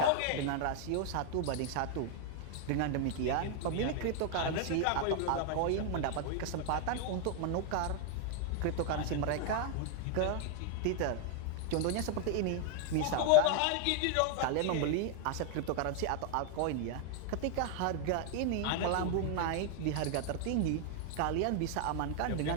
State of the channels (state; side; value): different; both; correlation 0.00